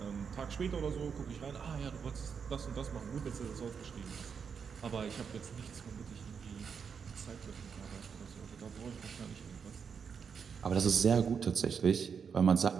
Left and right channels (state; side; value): quieter; left; 6.5 dB